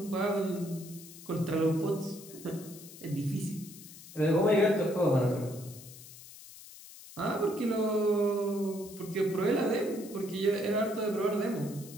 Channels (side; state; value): left; noise; hiss, 17 dB below the sound